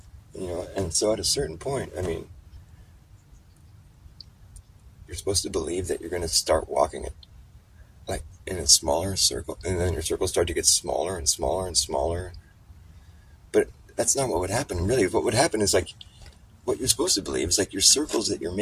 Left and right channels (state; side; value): identical; both; correlation 1.00